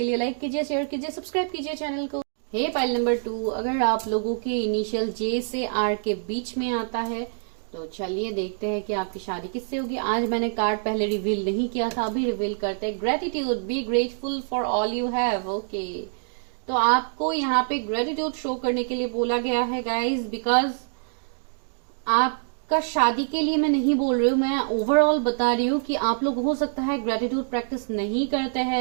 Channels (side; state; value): left; silent; digital silence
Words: लिए लाइक कीजिए, शेयर कीजिए, सब्सक्राइब कीजिए चैनल को। हे पाइल नंबर 2, अगर आप लोगों के इनिशियल जे से आर के बीच में आता है तो चलिए देखते हैं कि आपकी शादी किससे होगी। आज मैंने कार्ड पहले रिवील नहीं किया था, अभी रिवील करते हैं। Gratitude, be grateful for all you have. Okay, तो आपको यहाँ पे ग्रेटिट्यूड शो करने के लिए बोला गया है गाइज, बिकॉज आपका शादी के लिए मैं नहीं बोल रही हूँ, मैं ओवरऑल बता रही हूँ कि आप लोग हो सकता है ग्रेटिट्यूड प्रैक्टिस नहीं करते